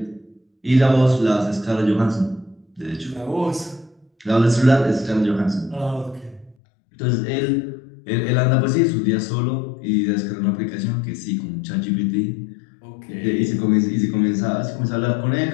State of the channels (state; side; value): drops out; right; at 6.6 s